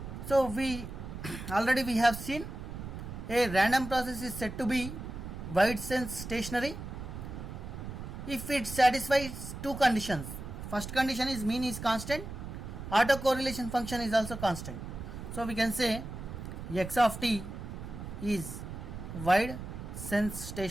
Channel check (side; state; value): right; noise; rumble, 9 dB below the sound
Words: So we already we have seen a random process is said to be wide sense stationary if it satisfies two conditions. First condition is mean is constant, autocorrelation function is also constant. So we can say x of t is wide sense